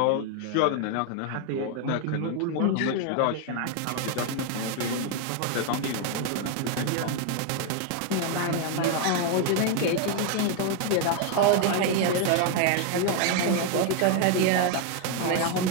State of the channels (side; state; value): both; different; correlation 0.00